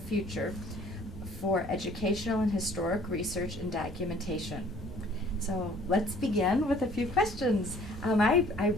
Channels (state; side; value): normal; both; correlation 0.55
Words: future for educational and historic research and documentation. So let's begin with a few questions. I